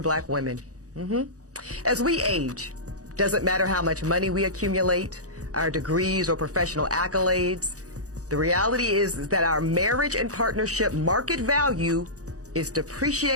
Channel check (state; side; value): late; left; 0.66 ms